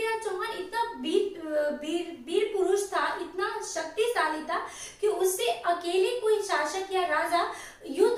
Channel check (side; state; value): both; identical; correlation 1.00